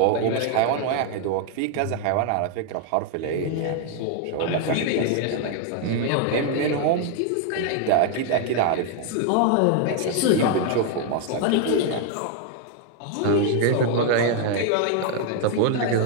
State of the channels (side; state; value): both; different; correlation 0.00